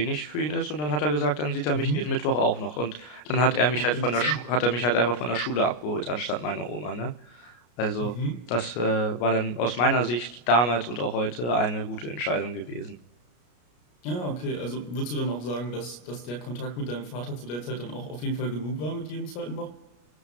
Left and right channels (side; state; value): right; late; 33 ms